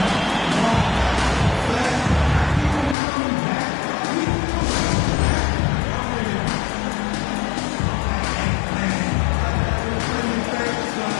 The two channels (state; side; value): drops out; right; at 3.0 s